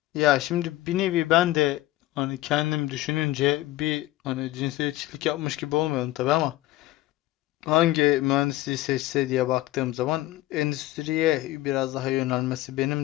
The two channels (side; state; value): right; quieter; 16.6 dB